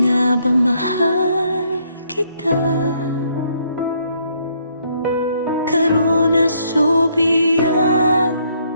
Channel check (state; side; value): inverted; both; correlation -0.70